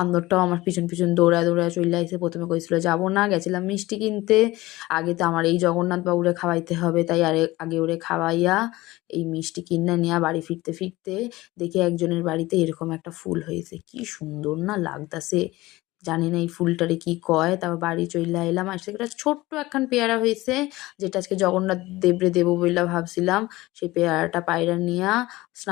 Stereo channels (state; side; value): quieter; right; 19.1 dB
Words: আমার পিছন পিছন দৌড়ায় দৌড়ায় চলে আইছে। প্রথমে কইছিল যাবো না, গেছিলাম মিষ্টি কিনতে। আগে তো আমার এই জগন্নাথ বাবুরে খাওয়াইতে হবে, তাই আগে ওরে খাওয়াইয়া এই মিষ্টি কিনে নিয়ে বাড়ি ফিরতে ফিরতে দেখি একজনের বাড়িতে এরকম একটা ফুল হয়েছে। কি সুন্দর না লাগতাছে, জানি না এই ফুলটারে কি কয়। তারপর বাড়ি চইলা এলাম, আসতে একটা ছোট্ট একখান পেয়ারা হয়েছে, যেটা আজকে জগন্নাথ দেবরে দেবো বইলা ভাবছিলাম। সেই পেয়ারাটা পায়রা নিয়া